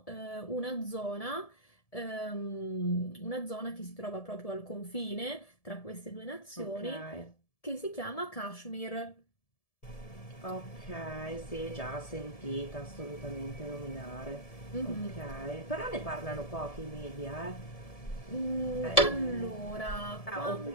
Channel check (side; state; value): right; late; 1.7 ms